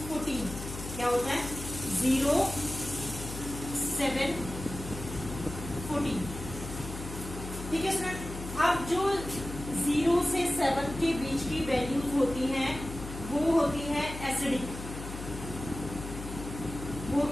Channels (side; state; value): left; noise; hum, 9 dB below the sound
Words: 14. क्या होता है? 0, 7, 14. ठीक है स्टूडेंट. अब जो 0 से 7 के बीच की वैल्यूज होती हैं वो होती है एसिडिक. वो